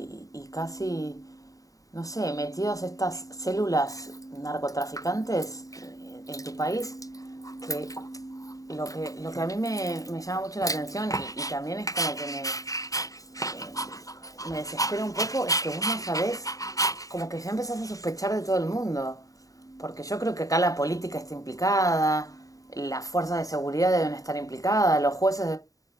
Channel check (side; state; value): right; late; 0.17 ms